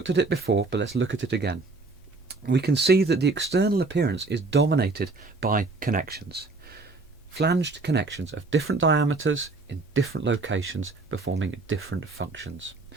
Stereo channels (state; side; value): quieter; left; 3.6 dB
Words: at it before, but let's look at it again. We can see that the external appearance is dominated by connections. Flanged connections of different diameters in different locations performing different functions.